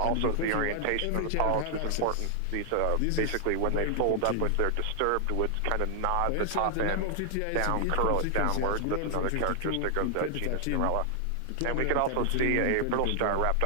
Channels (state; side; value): different; both; correlation 0.00